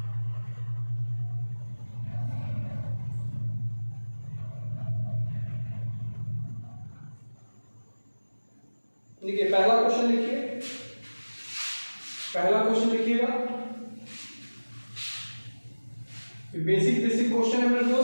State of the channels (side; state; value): both; inverted; correlation -1.00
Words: लिखिए पहला क्वेश्चन लिखिए, पहला क्वेश्चन लिखिएगा। बेसिक क्वेश्चन है मेरे